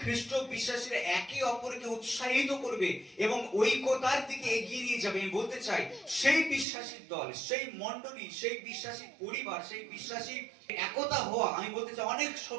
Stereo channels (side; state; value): left; drops out; at 6.7 s